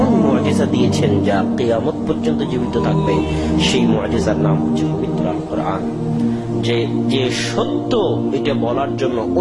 মুআজিজা দিয়েছেন যা কিয়ামত পর্যন্ত জীবিত থাকবে। সেই মুআজিজার নাম হচ্ছে পবিত্র আল কোরআন। যে সত্য এটা বলার জন্য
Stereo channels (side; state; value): both; identical; correlation 1.00